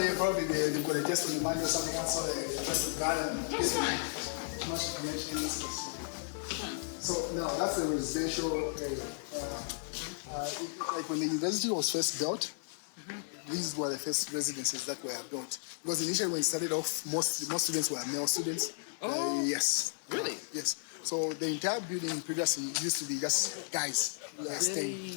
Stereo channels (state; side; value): silent; right; digital silence